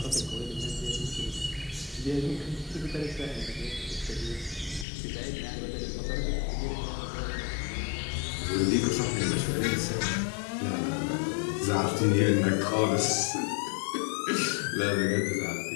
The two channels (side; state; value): right; drops out; at 4.9 s